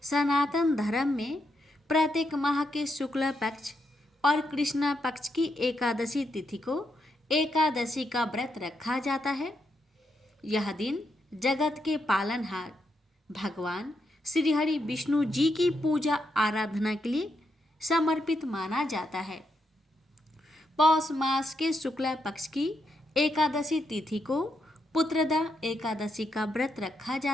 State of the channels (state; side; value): normal; both; correlation 0.81